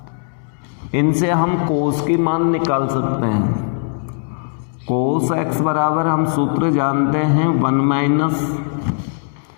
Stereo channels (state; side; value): silent; right; digital silence